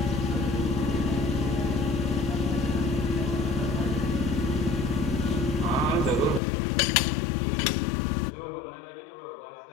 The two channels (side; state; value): right; drops out; at 6.4 s